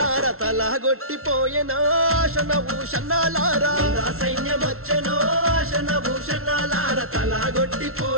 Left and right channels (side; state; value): left; late; 0.62 ms